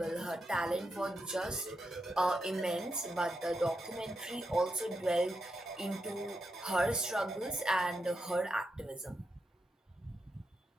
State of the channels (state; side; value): normal; both; correlation 0.85